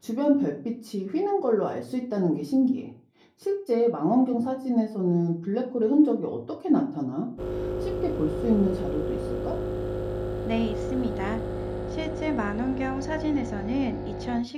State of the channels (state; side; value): identical; both; correlation 1.00